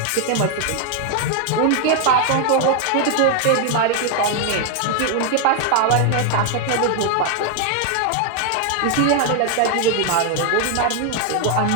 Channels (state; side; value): different; both; correlation 0.00